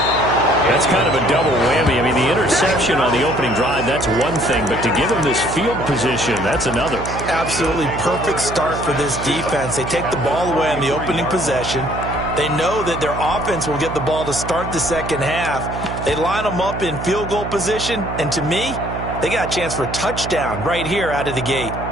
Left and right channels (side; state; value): right; noise; hum, 7 dB below the sound